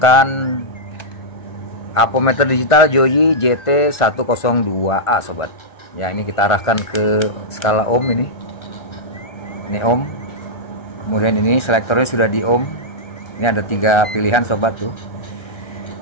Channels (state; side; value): late; right; 1.3 ms